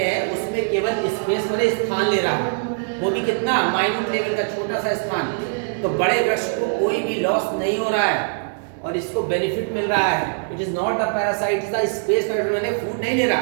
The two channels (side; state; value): left; silent; digital silence